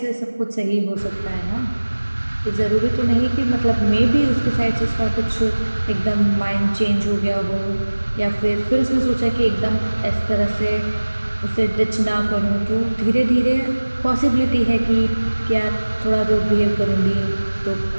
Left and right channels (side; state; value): both; inverted; correlation -1.00